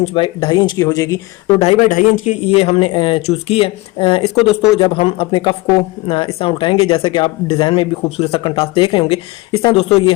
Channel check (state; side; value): quieter; right; 21.8 dB